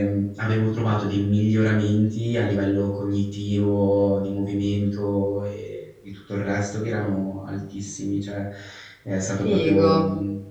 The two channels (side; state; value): both; identical; correlation 1.00